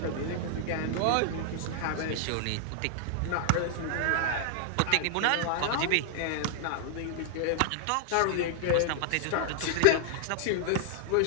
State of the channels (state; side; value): different; both; correlation 0.00